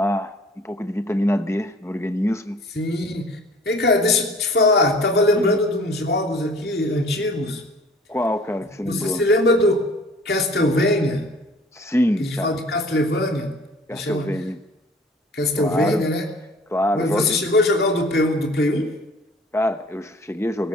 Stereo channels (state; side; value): normal; both; correlation 0.49